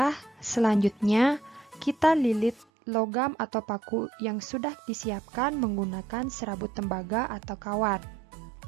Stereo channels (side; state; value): left; drops out; at 2.7 s